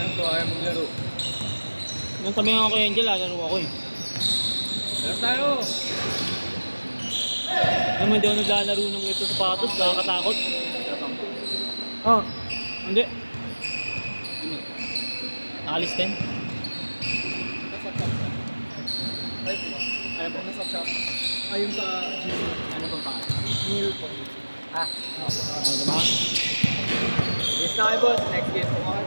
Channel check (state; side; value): inverted; both; correlation -1.00